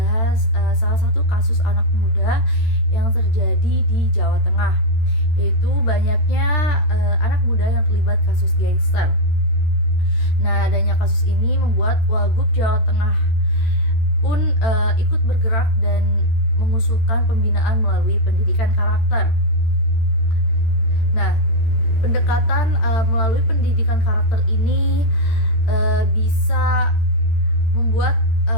salah satu kasus anak muda yang terjadi di Jawa Tengah, yaitu banyaknya anak muda yang terlibat kasus gangster. Nah, adanya kasus ini membuat Wagub Jawa Tengah pun ikut bergerak dan mengusulkan pembinaan melalui pendidikan karakter. Nah, pendekatan melalui pendidikan karakter ini bisa membuat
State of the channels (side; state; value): right; late; 13 ms